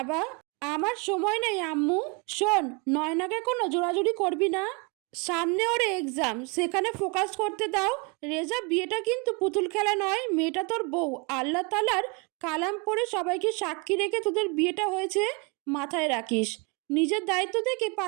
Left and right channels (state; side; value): quieter; left; 30.3 dB